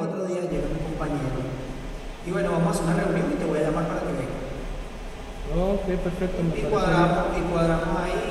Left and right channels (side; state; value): both; identical; correlation 1.00